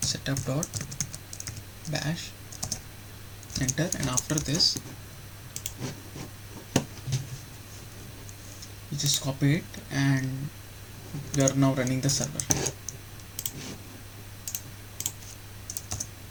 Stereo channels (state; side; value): identical; both; correlation 1.00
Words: setup.bash, enter, and after this you just copy it and you are now running the server.